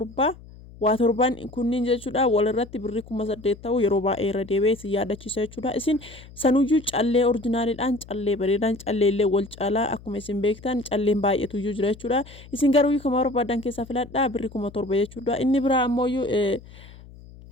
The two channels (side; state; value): left; noise; hum, 20 dB below the sound